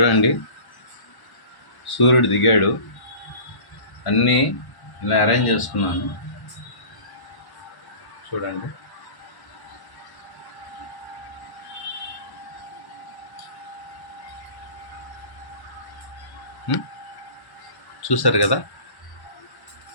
సూర్యుడు దిగాడు, అన్నీ ఇలా అరేంజ్ చేసుకున్నాను. చూడండి, చూసారు కదా.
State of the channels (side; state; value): right; late; 1.1 ms